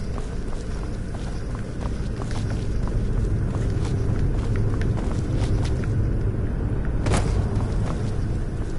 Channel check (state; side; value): identical; both; correlation 1.00